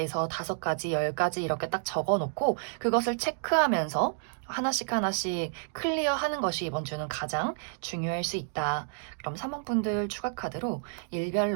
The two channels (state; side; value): silent; left; digital silence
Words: 5가지, 10가지 이렇게 딱 적어 놓고 그것을 체크하면서 하나씩 하나씩 클리어하는 것이 이번 주는 가장 중요할 수 있다. 그럼 3번분들 추가 카드로